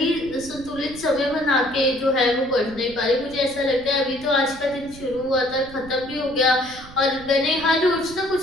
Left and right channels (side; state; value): right; noise; rumble, 18 dB below the sound